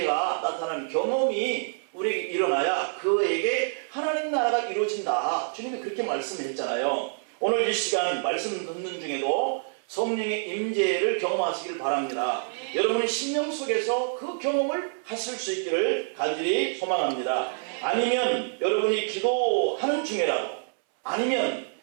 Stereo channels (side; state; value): left; silent; 60 dB below the other